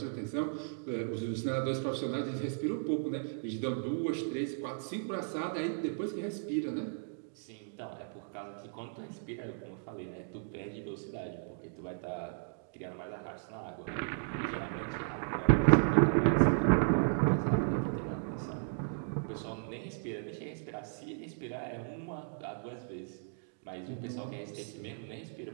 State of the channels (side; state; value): left; silent; digital silence